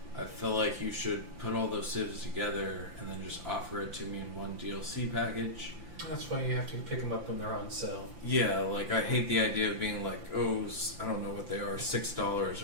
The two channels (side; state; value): left; late; 5.8 ms